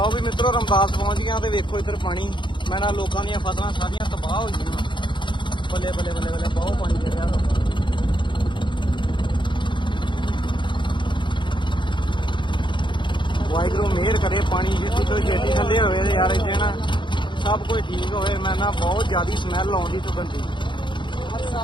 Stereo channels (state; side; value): late; right; 0.23 ms